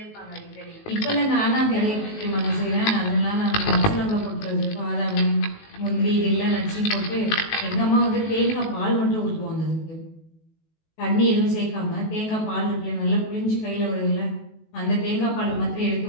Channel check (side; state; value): right; late; 19 ms